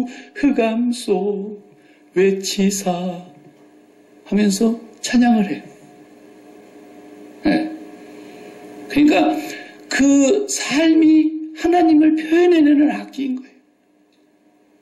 흑암 속 외치사 하면서 찬양을 해요. 네. 그러니까 그 삶이 하나님을 표현해내는 악기인 거예요.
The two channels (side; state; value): both; identical; correlation 1.00